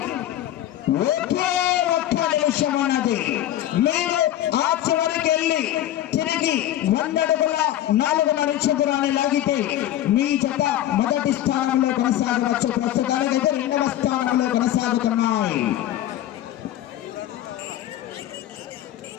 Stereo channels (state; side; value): quieter; right; 12.8 dB